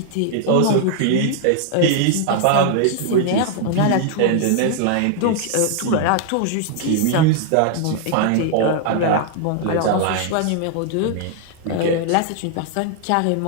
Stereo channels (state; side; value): different; both; correlation 0.00